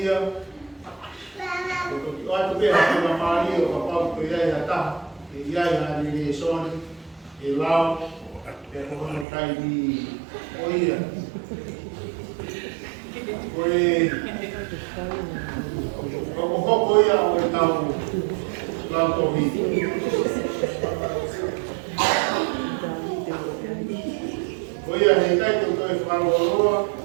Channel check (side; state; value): left; drops out; at 9.2 s